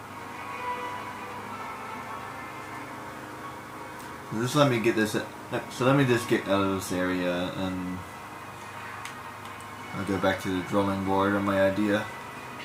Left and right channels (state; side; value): identical; both; correlation 1.00